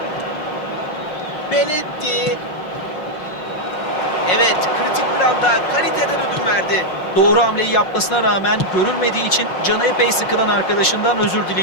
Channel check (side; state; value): right; late; 5.6 ms